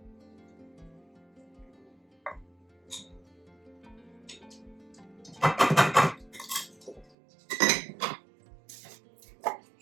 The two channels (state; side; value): drops out; left; at 7.1 s